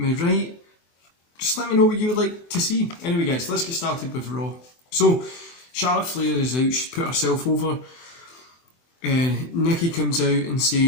write? Just let me know what you would like to see. Anyway guys, let's get started with Raw. So, Charlotte Flair is out, she's put herself over. Nikki comes out and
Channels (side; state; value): right; late; 24 ms